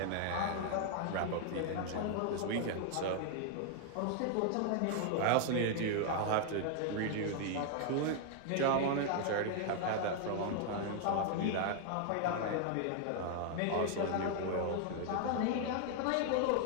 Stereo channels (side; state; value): both; different; correlation 0.00